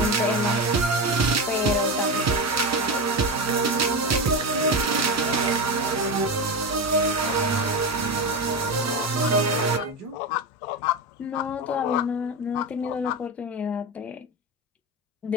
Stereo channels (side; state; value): both; normal; correlation 0.17